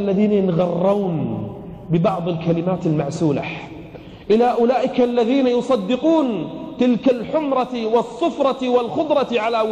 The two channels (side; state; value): both; identical; correlation 1.00